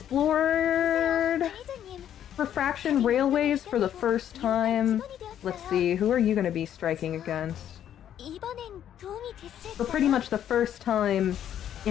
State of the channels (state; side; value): quieter; right; 10.3 dB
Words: 관리자님, refraction railways for the first time. Let's see, who are you going to be striking against? 이번엔 도움이 됐을까요? For pretty much the first time